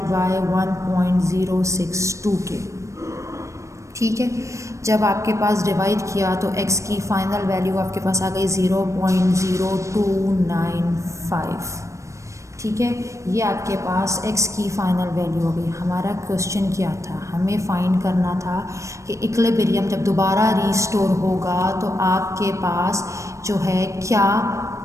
बाय 1.062 के। ठीक है, जब आपके पास डिवाइड किया तो x की फाइनल वैल्यू आपके पास आ गई 0.0295। ठीक है, ये आपके पास x की फ़ाइनल वैल्यू हो गई। हमारा क्वेश्चन क्या था, हमें फाइंड करना था कि इक्विलिब्रियम जब दोबारा रीस्टोर होगा तो आपके पास जो है क्या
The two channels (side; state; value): left; late; 0.15 ms